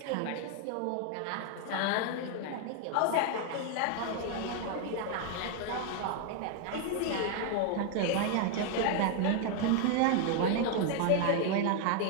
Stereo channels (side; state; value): both; different; correlation 0.01